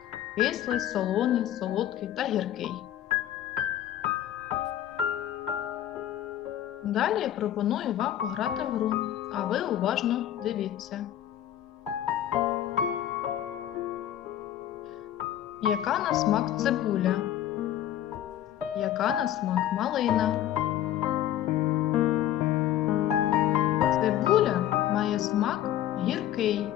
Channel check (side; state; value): right; quieter; 11.7 dB